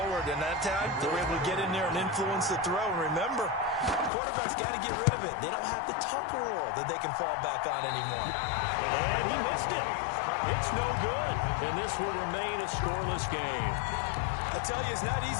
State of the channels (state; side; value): drops out; right; at 4.1 s